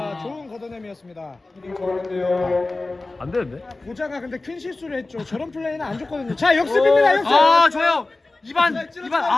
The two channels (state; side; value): quieter; right; 3.2 dB